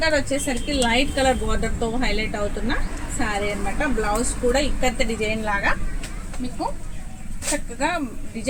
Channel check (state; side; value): identical; both; correlation 1.00